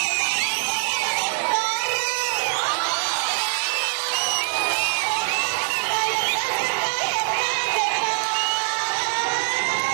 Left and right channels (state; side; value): silent; left; 63 dB below the other